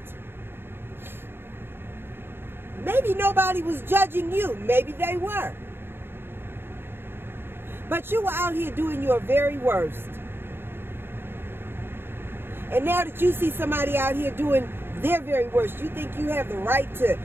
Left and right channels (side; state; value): left; late; 0.11 ms